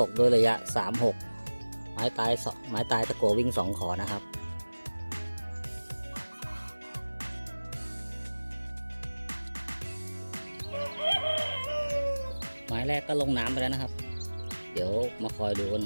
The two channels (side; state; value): both; inverted; correlation -1.00